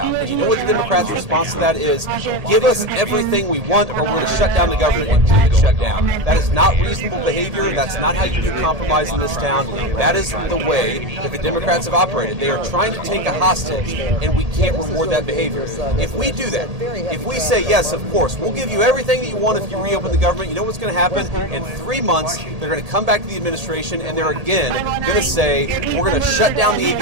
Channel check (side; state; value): left; late; 1.8 ms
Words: And you know what the Democrats' response to that is? Give us everything we want, or we're going to shut down the government and keep it shut down. That is not reasonable behavior. That's not how you do compromise in this town. That is the way that the Democrats have operated. They are trying to take a hostage, and we can't reward that behavior. If we do that, if we say, yes, of course, we'll give you everything that you want if you reopen the government, you know what's going to happen? In 3 months, they're going to come back to the administration, and they're again going to say, we're going to shut down the